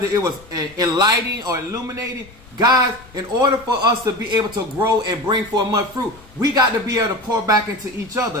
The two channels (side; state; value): left; noise; rumble, 24 dB below the sound